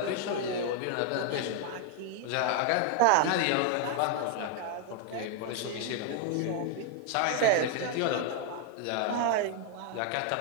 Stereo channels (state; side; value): different; both; correlation 0.00